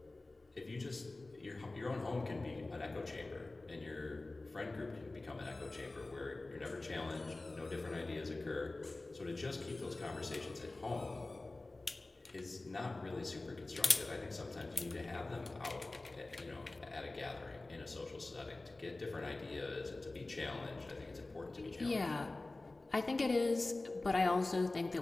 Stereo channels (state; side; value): quieter; right; 3.0 dB